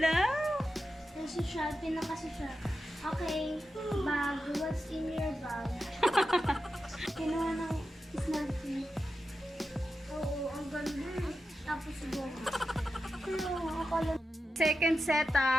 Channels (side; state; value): both; normal; correlation 0.90